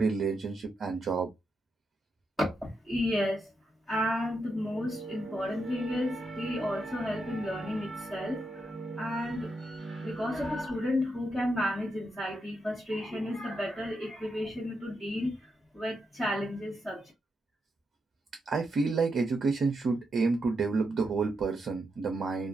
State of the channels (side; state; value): both; normal; correlation 0.84